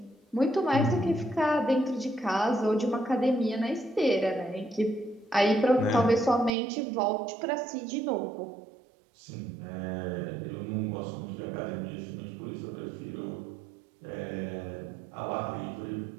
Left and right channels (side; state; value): left; drops out; at 6.5 s